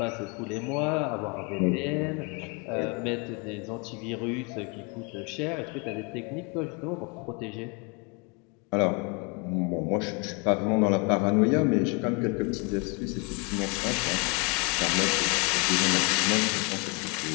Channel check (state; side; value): quieter; right; 31.5 dB